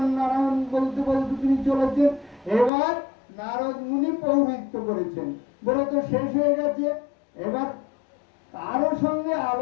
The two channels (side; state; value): right; drops out; at 2.7 s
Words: নারায়ণ বলতে বলতে তিনি চলেছেন। এবার নারদ মুনি পৌরোহিত্য করেছেন, ব্রত শেষ হয়ে গেছে। এবার কারো সঙ্গে